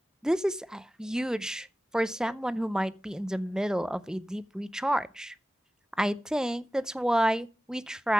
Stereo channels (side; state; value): both; normal; correlation 0.96